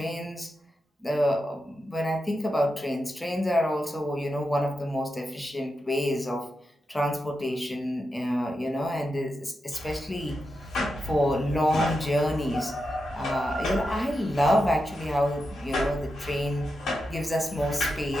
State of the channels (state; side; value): normal; both; correlation 0.88